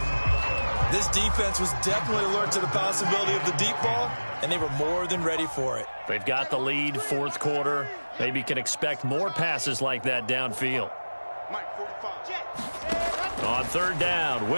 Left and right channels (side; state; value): both; inverted; correlation -1.00